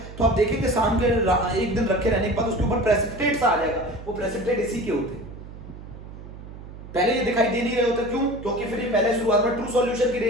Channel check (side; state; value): right; noise; hum, 14 dB below the sound